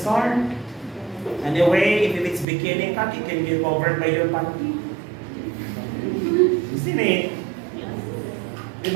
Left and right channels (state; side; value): drops out; left; at 2.5 s